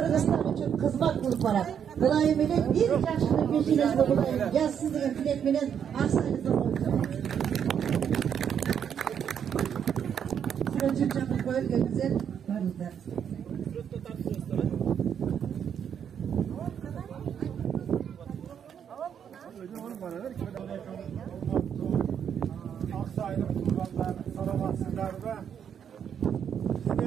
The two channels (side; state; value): left; quieter; 8.3 dB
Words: için kızmak kılıp barat. Kılayım ile bir yaşını peşinizde bulayım. Yazsın degen tilek menen aksayınızda koyacağım. Sürüncük çapı koyulgen güzel varızlar. Aksaylık kurbanlar, salamatsızlar ve